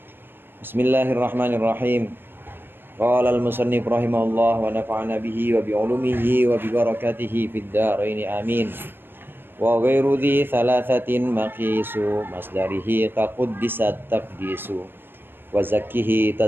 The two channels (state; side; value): late; left; 0.10 ms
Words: Bismillahirrahmanirrahim. Qala al-musannif rahimahullah wa nafa'ana bihi wa bi'ulumihi wa bi barakatihi fid dharain amin. Wa ghairu dhi thalathatin maqisu masdarihi qaquddisat taqdisu wa zakkihi